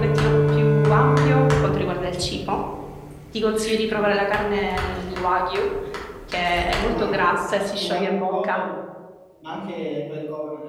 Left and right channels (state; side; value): identical; both; correlation 1.00